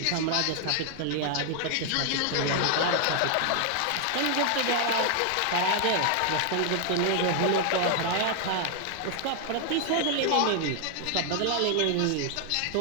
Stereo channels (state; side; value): different; both; correlation 0.00